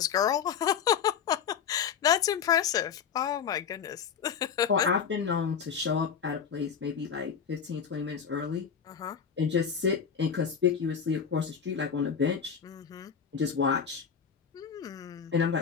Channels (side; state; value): right; quieter; 7.2 dB